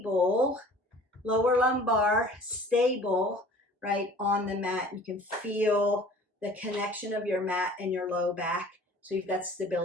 lower lumbar stable, right on the mat. You can feel the connection of your mat and your low back. So you've got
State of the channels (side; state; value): both; normal; correlation 0.48